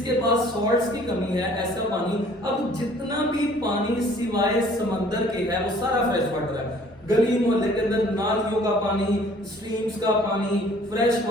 पास सॉल्ट्स की कमी है ऐसा पानी। अब जितना भी पानी सिवाय समंदर के है वो सारा फ्रेश वाटर है। गली मोहल्ले के अंदर नालियों का पानी, स्ट्रीम्स का पानी फ्रेश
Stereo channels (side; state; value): both; normal; correlation 0.55